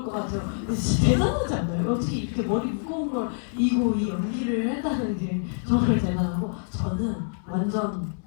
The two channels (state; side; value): silent; right; digital silence